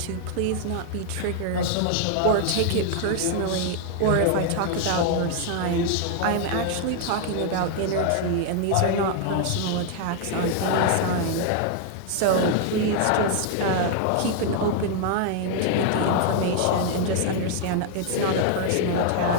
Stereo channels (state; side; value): different; both; correlation 0.00